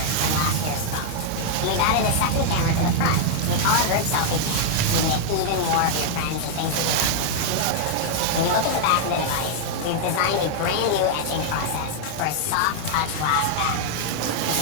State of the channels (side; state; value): both; different; correlation -0.01